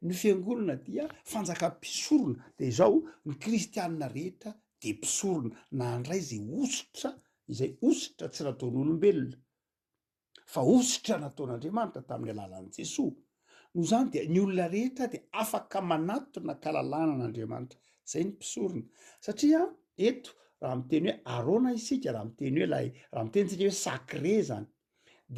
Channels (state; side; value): identical; both; correlation 1.00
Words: ny fiangonana dia fanjaka mpisorona de zao ny kristianina rehetra de mpisorona nandray zay osotra izay osotra tsy nataon'olombelona fa osotra nataon'Andriamanitra tamin'ny alalan'i Jesosy no zany de ny olona rehetra de afaka manatona kalalana an'Andriamanitra zay ny mpisorona satria eto raha miteny hoe arona isika raha miteny hoe raha mitentsika hoe sacré zany